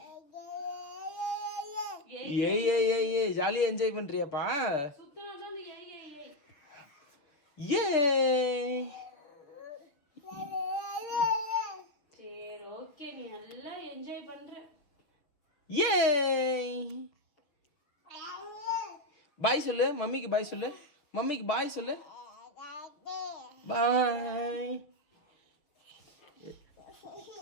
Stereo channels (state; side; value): late; right; 6.7 ms